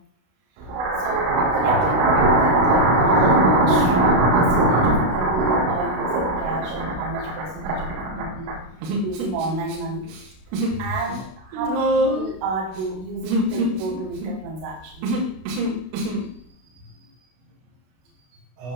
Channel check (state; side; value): late; left; 32 ms